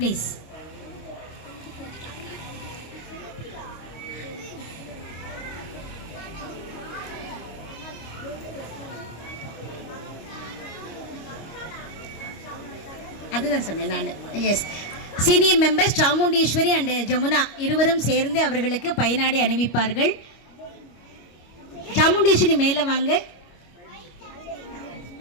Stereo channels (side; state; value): right; late; 25 ms